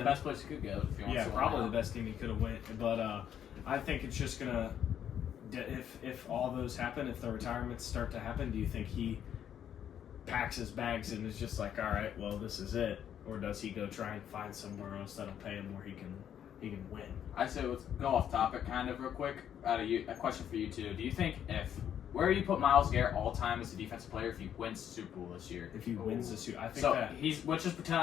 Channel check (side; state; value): right; quieter; 9.5 dB